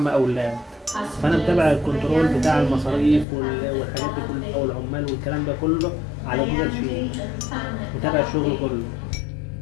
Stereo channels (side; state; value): right; drops out; at 3.2 s